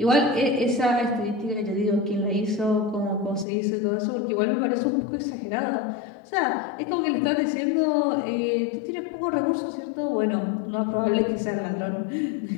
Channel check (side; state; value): right; drops out; at 3.5 s